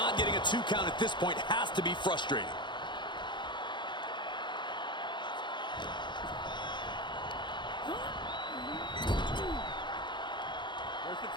getting a 2 count at this point has to be frustrating. Where's the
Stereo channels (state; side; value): late; right; 0.22 ms